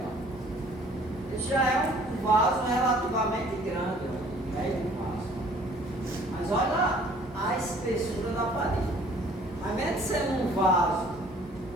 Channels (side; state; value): both; normal; correlation 0.55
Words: Esse já é um vaso relativamente grande, ó, médio vaso. Mas olha a espessura da parede. Ao invés de ser um vaso